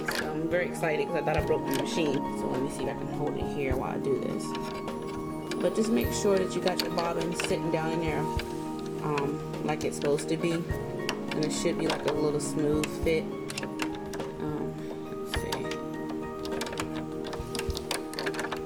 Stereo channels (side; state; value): both; identical; correlation 1.00